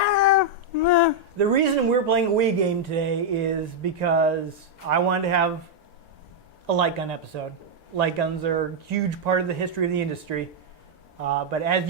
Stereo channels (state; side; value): normal; both; correlation -0.02